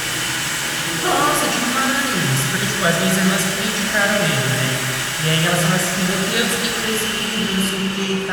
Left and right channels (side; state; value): both; identical; correlation 1.00